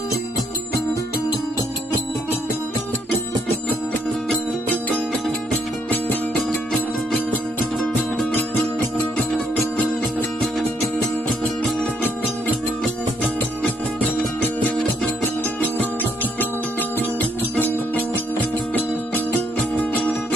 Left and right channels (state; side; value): normal; both; correlation 0.72